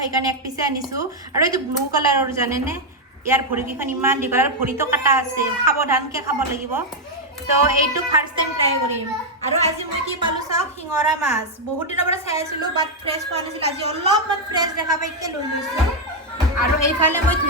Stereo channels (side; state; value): both; normal; correlation 0.00